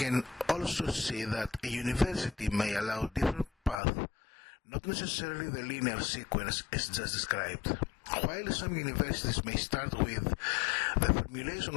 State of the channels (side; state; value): right; drops out; at 3.8 s